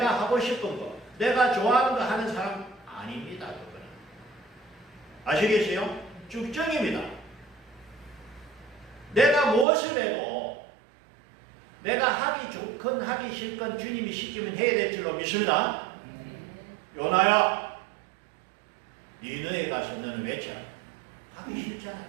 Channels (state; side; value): drops out; left; at 9.7 s